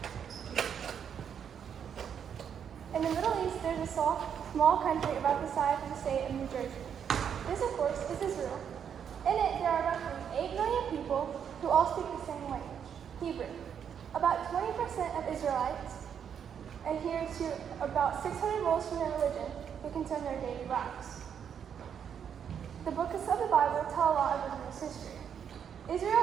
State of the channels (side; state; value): left; quieter; 8.0 dB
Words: In the Middle East, there's a small country about the size of the state of New Jersey. This, of course, is Israel. In it, there are roughly 8 million people who all speak the same language, Hebrew. About 20% of Israelites adhere to about 600 rules from their religion who concern their daily lives. The books of the Bible tell a lot of Israel's history.